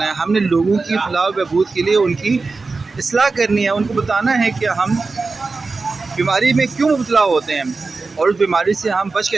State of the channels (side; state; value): left; quieter; 4.0 dB